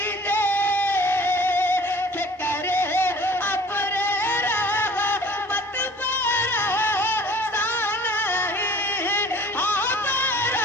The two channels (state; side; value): normal; both; correlation 0.48